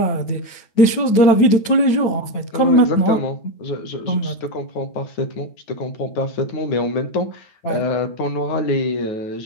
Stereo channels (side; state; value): right; late; 9.3 ms